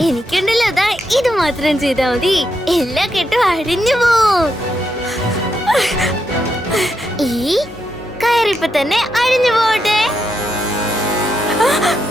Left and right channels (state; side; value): normal; both; correlation 0.82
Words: എനിക്കുണ്ടല്ലോ അതാ ഇത് മാത്രം ചെയ്താ മതി, എല്ലാ കെട്ടും അഴിഞ്ഞു പോവും. ഈ കയറിപ്പോ തന്നെ അഴിഞ്ഞു പോട്ടെ.